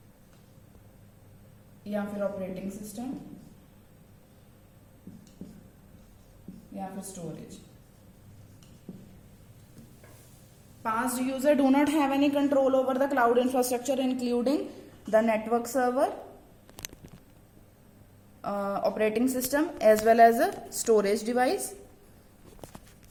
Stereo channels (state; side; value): identical; both; correlation 1.00